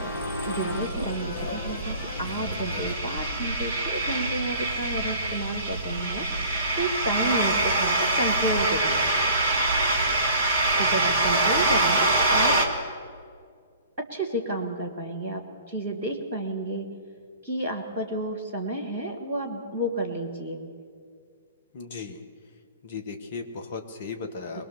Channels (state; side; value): inverted; both; correlation -0.47